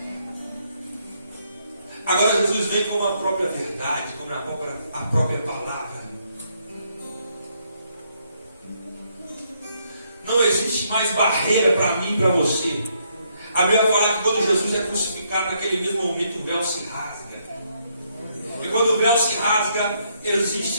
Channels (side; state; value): both; inverted; correlation -0.74